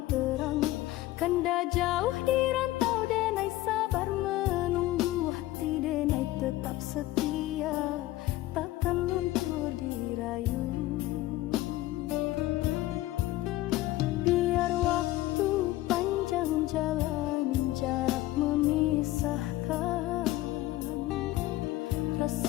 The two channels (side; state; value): right; quieter; 16.8 dB